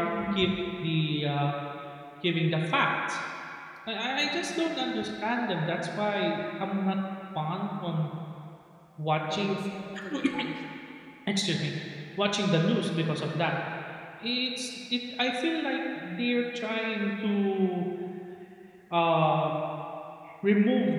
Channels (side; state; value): both; identical; correlation 1.00